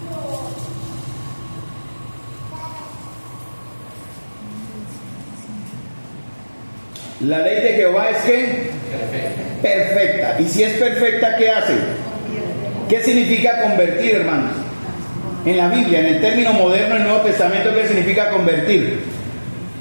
La ley de Jehová es ¿qué? Perfecta. Y si es perfecta, ¿qué hace? ¿Qué significa convertir, hermanos? En la Biblia, en el término moderno del Nuevo Testamento, ¿qué significa convertir?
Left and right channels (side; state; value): both; inverted; correlation -1.00